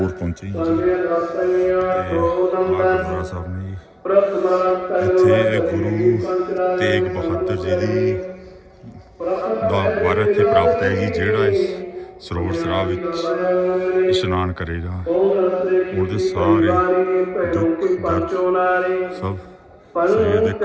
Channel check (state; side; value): identical; both; correlation 1.00